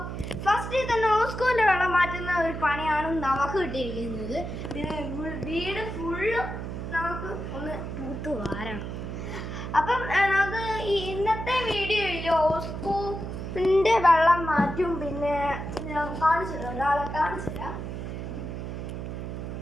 ഫസ്റ്റ് തന്നെ ഓസ്കോന്റെ വെള്ളം മാറ്റുന്ന ഒരു പണിയാണ് നമുക്ക് കിട്ടിയിരിക്കുന്നത്. പിന്നെ വീട് ഫുള്ള് നമുക്ക് ഒന്ന് തൂത്ത് വാരണം. അപ്പം നമുക്ക് ഈ ഇന്നത്തെ വീഡിയോയിൽ ഓസ്കോന്റെ വെള്ളം മാറ്റും. പിന്നെ ഞാൻ കാണിച്ചു തരാം, ഒരാളെ കാണിച്ചു തരാം.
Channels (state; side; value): noise; right; hum, 6 dB below the sound